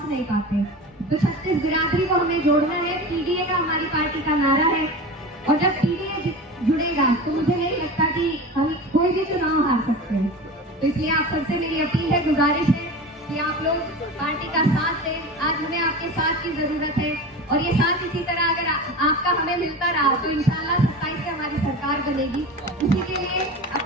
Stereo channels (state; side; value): normal; both; correlation 0.31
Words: नहीं पाते। तो 36 बिरादरी को हमें जोड़ना है। पीडीए का हमारी पार्टी का नारा है, और जब पीडीए जुड़ेगा तो मुझे नहीं लगता कि हम कोई भी चुनाव हार सकते हैं। तो इसलिए आप सबसे मेरी अपील है, गुजारिश है कि आप लोग पार्टी का साथ दें। आज हमें आपके साथ की जरूरत है, और ये साथ इसी तरह अगर आपका हमें मिलता रहा तो इंशाल्लाह 27 से हमारी सरकार बनेगी। इसी के लिए,